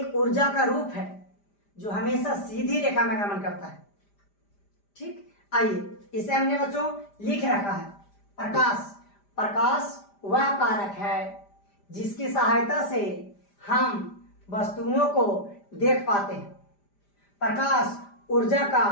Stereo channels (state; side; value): late; right; 5.0 ms